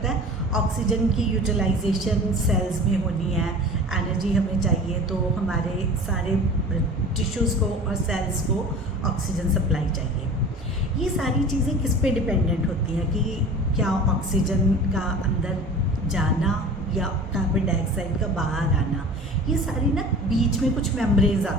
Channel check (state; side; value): normal; both; correlation 0.39